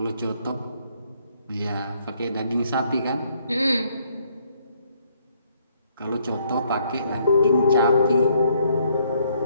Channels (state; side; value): inverted; both; correlation -0.68